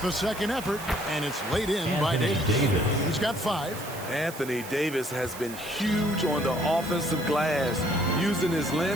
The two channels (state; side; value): noise; right; hiss, 14 dB below the sound